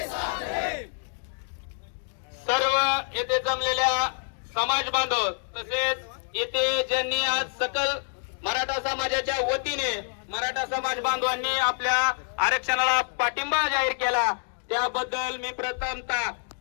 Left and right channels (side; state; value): right; silent; 60 dB below the other